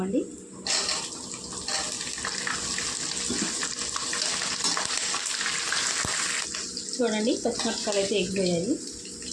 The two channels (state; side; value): identical; both; correlation 1.00